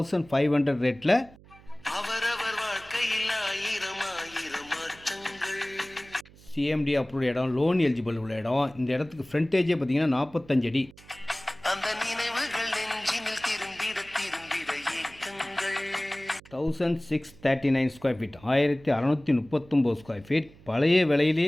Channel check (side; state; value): right; noise; hum, 23 dB below the sound